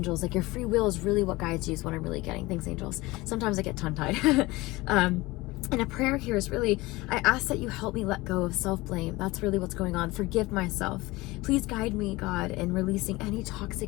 Like, your free will is really what guides you, is what I'm really getting. Thanks, angels. Sometimes I get tongue-tied. And a prayer here is really, I ask that you help me let go of self-blame. That's really what's going on. Forgive myself. Please guide me, God, in releasing any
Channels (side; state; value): right; quieter; 21.0 dB